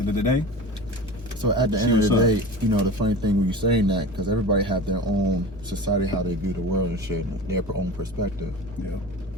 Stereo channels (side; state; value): both; normal; correlation 0.33